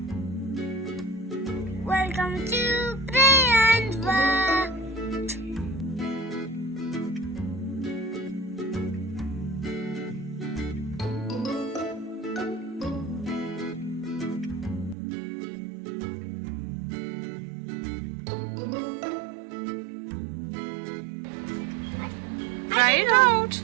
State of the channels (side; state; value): left; drops out; at 15.0 s